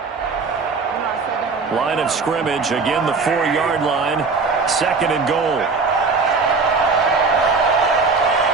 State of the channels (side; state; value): left; quieter; 4.4 dB